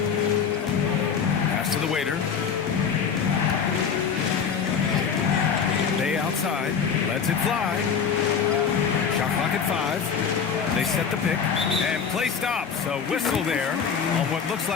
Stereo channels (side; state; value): right; quieter; 6.6 dB